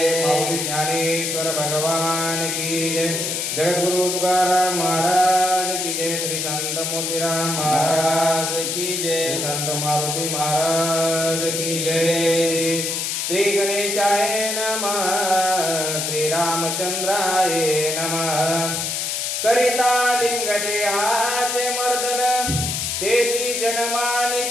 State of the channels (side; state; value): left; noise; hiss, 1 dB below the sound